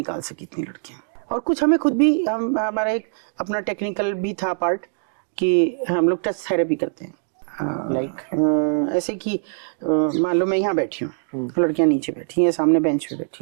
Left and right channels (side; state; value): left; silent; digital silence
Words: सकी इतनी लड़कियां। और कुछ हमें खुद भी, हमारा एक अपना टेक्निकल भी था पार्ट कि हम लोग टच थेरेपी करते हैं। ऐसे कि मान लो मैं यहाँ बैठी हूँ, लड़कियां नीचे बैठी हैं, सामने बेंच पे